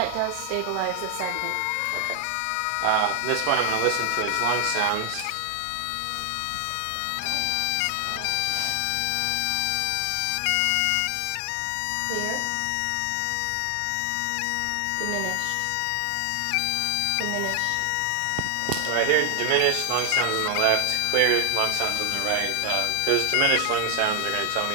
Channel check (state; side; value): different; both; correlation 0.00